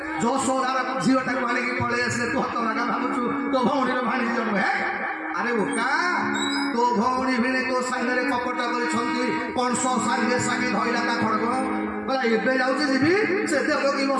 ଯଶୋଦାର ଝିଅଟାକୁ ଆଣିକି ପଳେଇ ଆସିଲେ। ତୁ ହତଭାଗା ଭାବୁଛୁ ତୋ ଭଉଣୀର ଭାଣିଜୀ ଜନ୍ମ? ହେ ଆରେ ବୋକା, ତୋ ଭଉଣୀ ଭିଣେଇ ତୋ ସାଙ୍ଗରେ କପଟ କରିଛନ୍ତି। କଂସ ସାଙ୍ଗେ ସାଙ୍ଗେ ଧଇଲା ତା ଖଡ଼ଗ କହିଲା ଏବେ ଯାଉଛି ଯିବି ସେ ଦେବକୀ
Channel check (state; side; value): identical; both; correlation 1.00